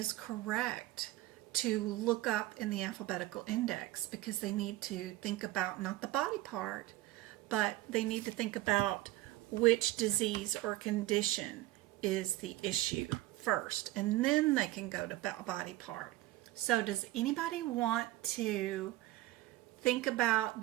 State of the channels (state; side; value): quieter; left; 17.1 dB